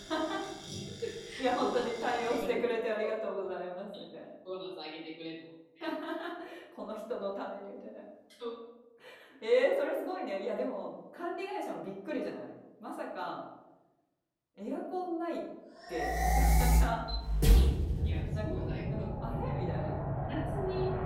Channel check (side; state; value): both; identical; correlation 1.00